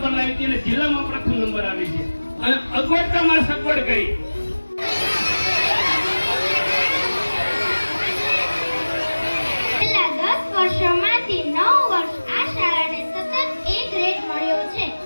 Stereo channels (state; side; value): inverted; both; correlation -1.00